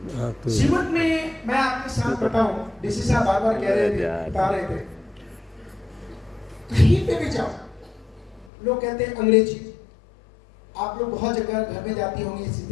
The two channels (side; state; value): right; drops out; at 8.5 s